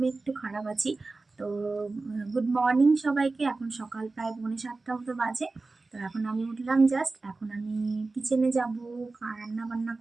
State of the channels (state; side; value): quieter; left; 3.6 dB